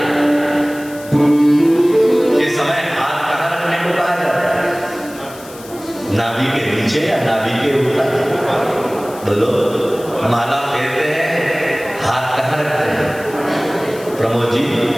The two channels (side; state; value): left; noise; hiss, 19 dB below the sound